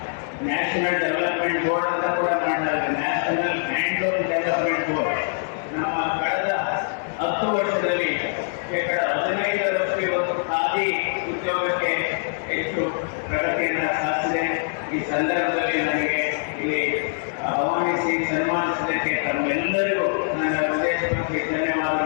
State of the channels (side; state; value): right; silent; digital silence